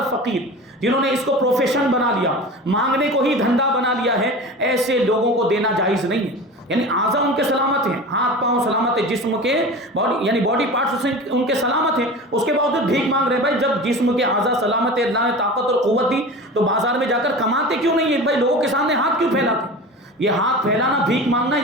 فقیر، جنہوں نے اس کو پروفیشن بنا لیا، مانگنے کو ہی دھندا بنا لیا ہے، ایسے لوگوں کو دینا جائز نہیں ہے۔ یعنی اعضاء ان کے سلامت ہیں، ہاتھ پاؤں سلامت ہے، جسم کے باڈی یعنی باڈی پارٹس ان کے سلامت ہیں، اس کے باوجود بھیک مانگ رہے ہیں۔ بھائی جب جسم کے اعضاء سلامت ہے، اللہ نے طاقت اور قوت دی، تو بازار میں جا کر کماتے کیوں نہیں ہے؟ بھائی لوگوں کے سامنے ہاتھ کیوں پھیلاتے؟ یہ ہاتھ پھیلانا، بھیک مانگنا،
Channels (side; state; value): both; normal; correlation 0.33